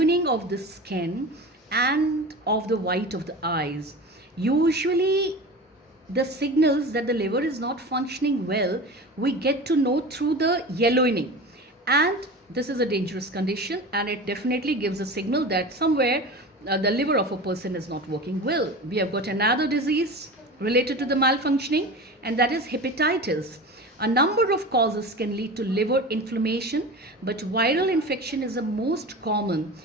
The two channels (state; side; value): normal; both; correlation 0.32